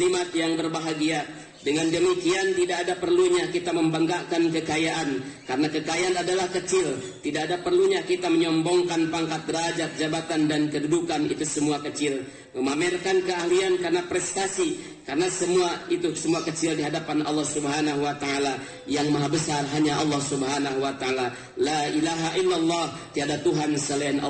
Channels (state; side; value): identical; both; correlation 1.00